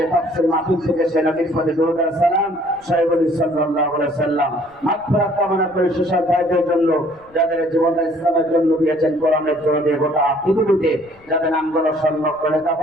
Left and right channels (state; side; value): noise; left; rumble, 30 dB below the sound